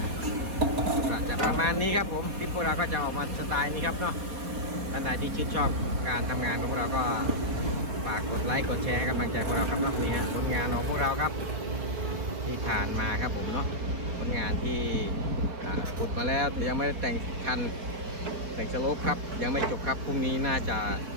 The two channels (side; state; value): left; late; 4.4 ms